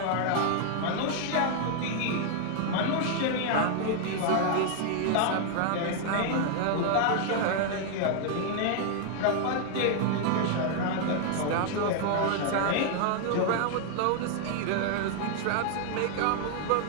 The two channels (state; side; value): different; both; correlation 0.00